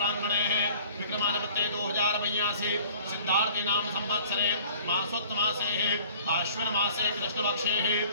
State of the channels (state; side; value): inverted; both; correlation -0.50